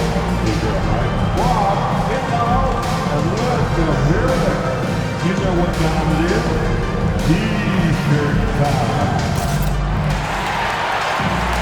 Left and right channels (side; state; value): both; identical; correlation 1.00